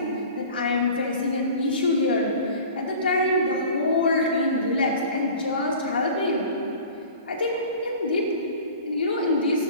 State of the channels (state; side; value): inverted; both; correlation -0.42